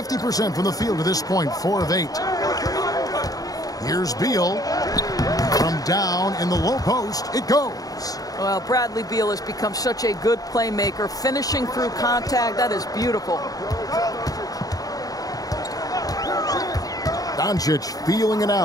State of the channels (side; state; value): right; late; 0.18 ms